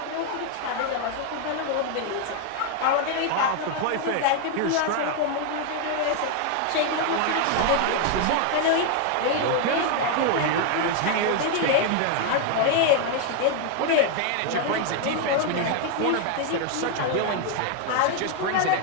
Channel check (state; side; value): different; both; correlation 0.00